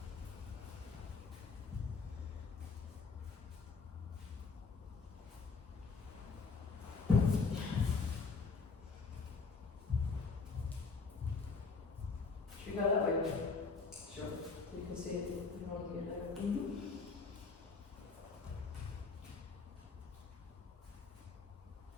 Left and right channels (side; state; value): right; quieter; 4.6 dB